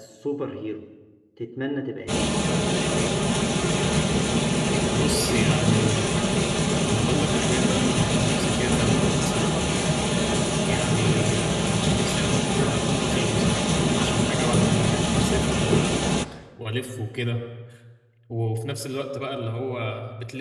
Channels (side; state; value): both; identical; correlation 1.00